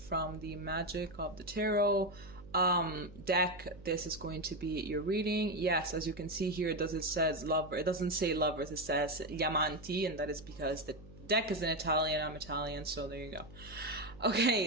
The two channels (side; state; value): right; noise; hum, 19 dB below the sound